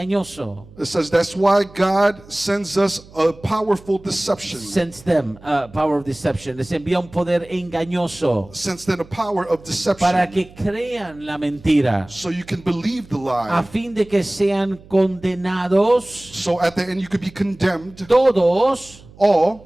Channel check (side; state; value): right; noise; hum, 22 dB below the sound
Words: It says that's why God sends us a powerful deception. Sends them power of deception. Les envía un poder engañoso Sends them a power of para deception. que crean la mentira, So you can believe the a lie. fin de que sean condenados So at the end you could be condemned. todos All